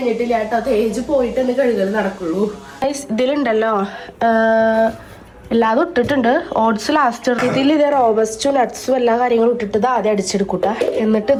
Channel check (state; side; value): identical; both; correlation 1.00